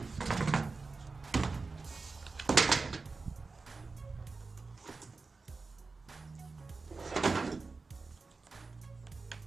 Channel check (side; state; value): left; quieter; 4.0 dB